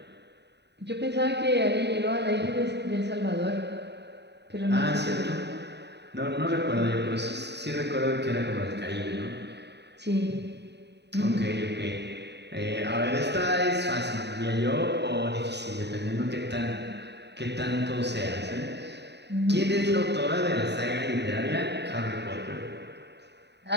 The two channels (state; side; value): late; left; 0.50 ms